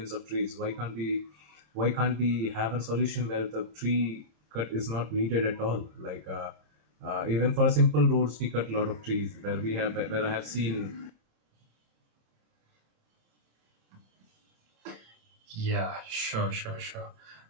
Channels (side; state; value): left; late; 27 ms